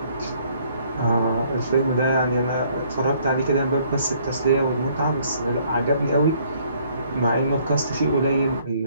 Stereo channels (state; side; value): inverted; both; correlation -0.63